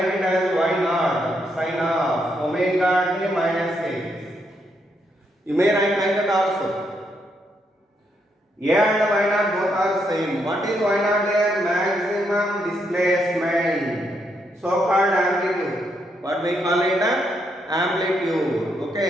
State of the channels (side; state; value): both; normal; correlation 0.77